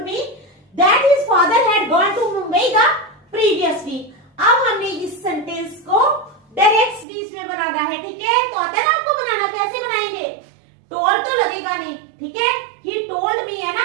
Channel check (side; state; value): left; drops out; at 7.1 s